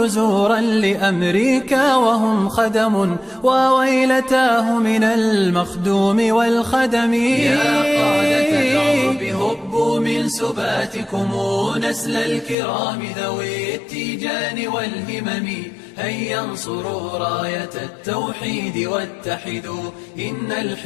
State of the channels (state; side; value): drops out; right; at 12.6 s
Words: لأمريكا وهم خدم، وويلتاه من المخدوم والخدم. يا قادة العرب هبوا من سباتكم، نسل الكرام ذوي التيجان والهمم. هيا انصروا راية التوحيد واتحدوا، إن